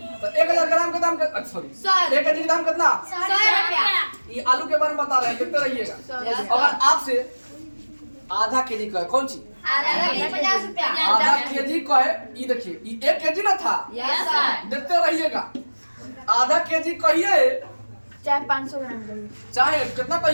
तो 1000 ग्राम का दाम सॉरी 1 केजी का दाम कितना? 100 रुपया। ये आलू के बारे में बता रहे हैं, देखते रहिएगा। अगर आपसे आधा केजी का है, कौन सी आधा केजी 50 रुपया। आधा केजी का है, ये देखिए ये 1 केजी ना था, यस सर। देखते रहिएगा। आधा केजी कहिए चाहे 500 ग्राम करिए, चाहे कितना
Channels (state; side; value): inverted; both; correlation -1.00